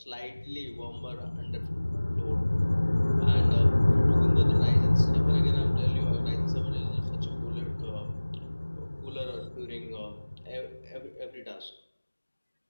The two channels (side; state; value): both; inverted; correlation -1.00